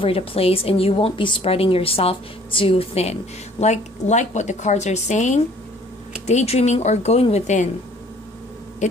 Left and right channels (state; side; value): normal; both; correlation 0.56